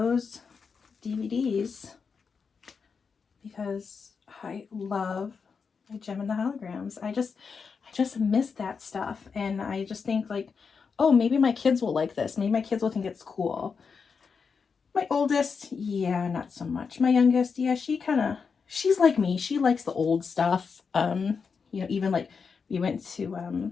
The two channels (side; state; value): right; quieter; 5.6 dB